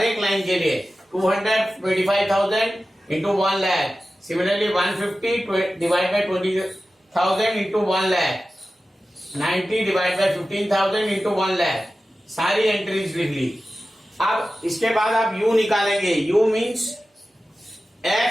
एक लाइन के लिए. 225,000 into 1 lakh. Similarly 150 divide by 20,000 into 1 lakh. 90 divide by 15,000 into 1 lakh. सारी एंट्रीज लिख ली. अब इसके बाद आप u निकालेंगे. u means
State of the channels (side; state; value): both; normal; correlation 0.94